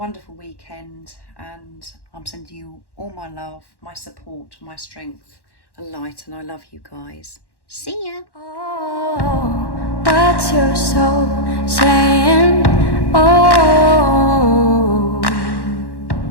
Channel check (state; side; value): late; right; 1.1 ms